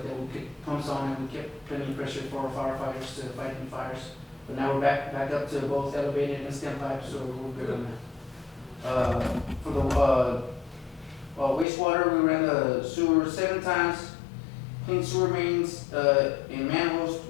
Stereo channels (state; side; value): drops out; right; at 11.7 s